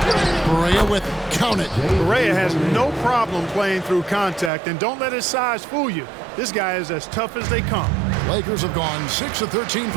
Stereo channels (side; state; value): left; drops out; at 4.5 s